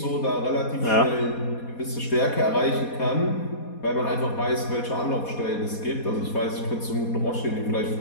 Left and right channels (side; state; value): right; late; 4.2 ms